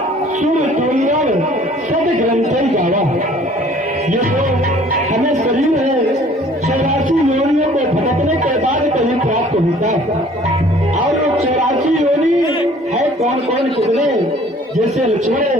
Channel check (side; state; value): both; normal; correlation 0.54